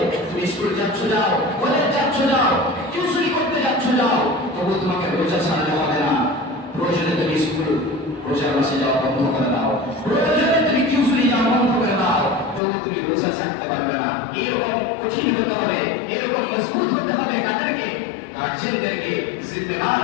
তুমি স্কুল যাচ্ছ যাও, কলেজ যাচ্ছ যাও, টিউশনি করতে যাচ্ছ যাও, তবু তোমাকে রোজা ছাড়তে হবে না। প্রয়োজনে তুমি স্কুল রোজার মাসে যাওয়া বন্ধ করে দাও, প্রয়োজনে তুমি টিউশনি যাওয়া বন্ধ করে দাও, তবু তুমি রোজা ছাড়তে পারবে না। এরকম কঠিন হতে হবে, এরকম মজবুত হতে হবে কাদেরকে? গার্জিয়ানদেরকে,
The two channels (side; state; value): right; drops out; at 12.6 s